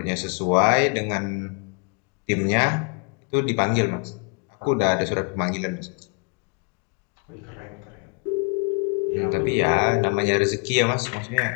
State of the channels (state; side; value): quieter; right; 34.3 dB